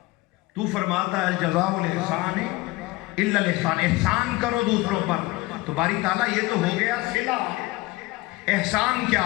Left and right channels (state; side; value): quieter; right; 20.8 dB